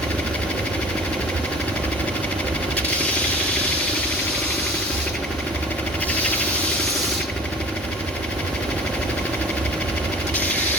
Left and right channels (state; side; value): normal; both; correlation 0.45